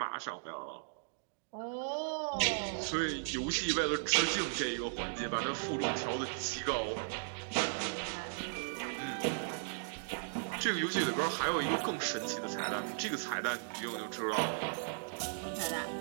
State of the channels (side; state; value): left; silent; digital silence